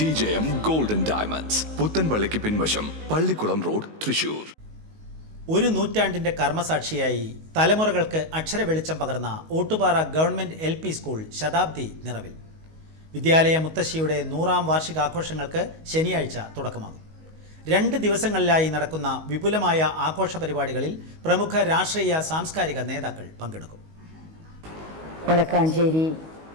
ഗോൾഡൻ ഡയമണ്ട്സ്, പുത്തൻപള്ളിക്ക് പിൻവശം, പള്ളിക്കുളം റോഡ്, തൃശ്ശൂർ. ഒരു നൂറ്റാണ്ടിന്റെ കർമ്മസാക്ഷിയായി തലമുറകൾക്ക് അക്ഷര വെളിച്ചം പകർന്ന ഓട്ടുപാറ ഗവൺമെന്റ് LP സ്കൂൾ ശതാബ്ദി നിറവിൽ. വിദ്യാലയ മുത്തശ്ശിയുടെ 100ാം വാർഷികാഘോഷങ്ങൾക്ക് ശനിയാഴ്ച തുടക്കമാകും. 2 ദിവസങ്ങളിലായി നടക്കുന്ന വിപുലമായ ആഘോഷ പരിപാടികളിൽ പ്രമുഖ രാഷ്ട്രീയ സാംസ്കാരിക നേതാക്കൾ പങ്കെടുക്കും. വടക്കാഞ്ചേരി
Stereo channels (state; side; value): late; left; 19 ms